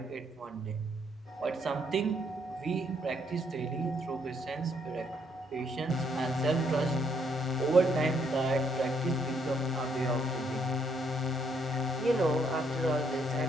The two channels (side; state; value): both; normal; correlation 0.71